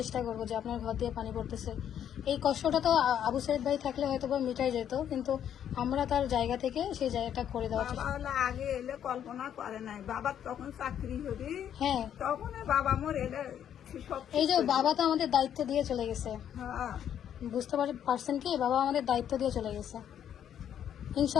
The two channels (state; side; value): quieter; right; 9.7 dB